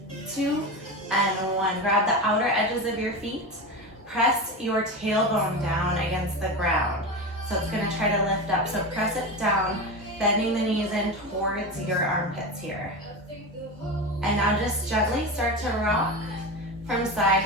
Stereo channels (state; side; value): normal; both; correlation 0.22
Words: 2, and 1. Grab the outer edges of your feet. Press your tailbone down against the ground. So it's gonna try to lift up. So press it down, bending the knees in towards your armpits here. And now just gently start to rock from side